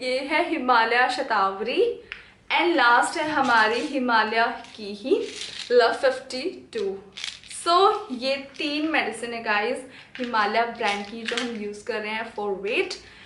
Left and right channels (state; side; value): identical; both; correlation 1.00